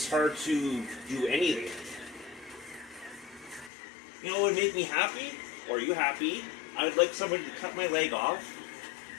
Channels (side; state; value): right; drops out; at 3.7 s